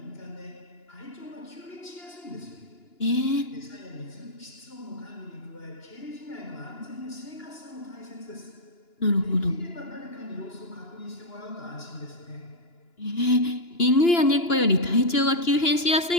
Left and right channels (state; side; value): late; right; 2.9 ms